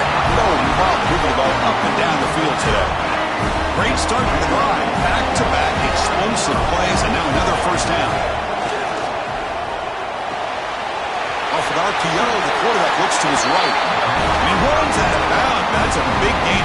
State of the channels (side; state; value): both; identical; correlation 1.00